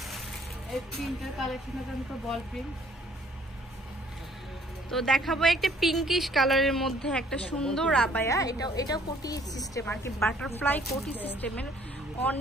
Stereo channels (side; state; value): both; normal; correlation 0.60